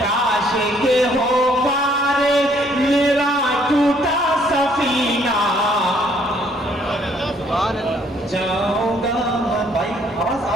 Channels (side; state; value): both; normal; correlation 0.64